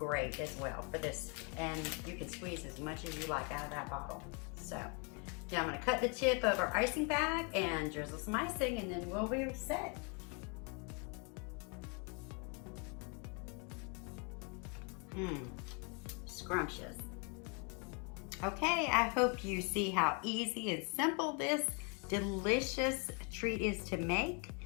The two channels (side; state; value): right; quieter; 34.2 dB